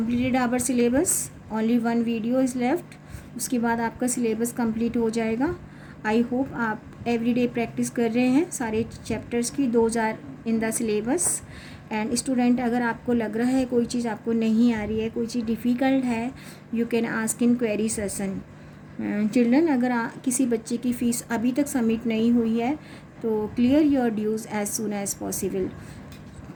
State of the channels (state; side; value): identical; both; correlation 1.00